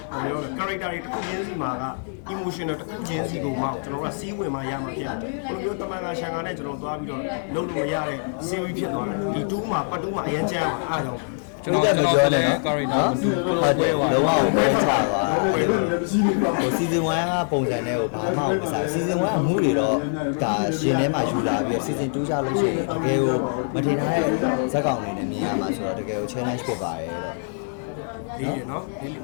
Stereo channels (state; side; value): silent; right; 62 dB below the other